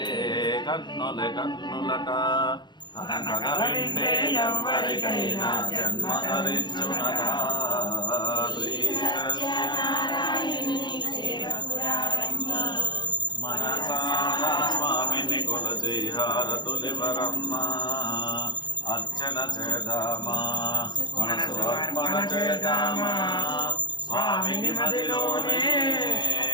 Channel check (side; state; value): right; late; 0.21 ms